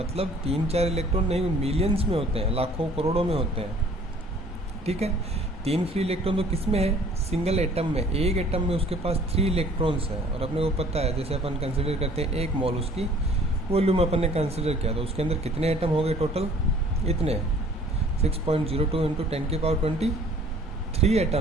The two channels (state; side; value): normal; both; correlation 0.54